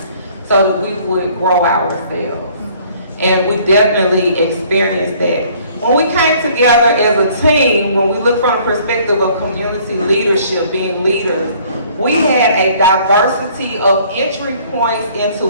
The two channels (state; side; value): inverted; both; correlation -0.57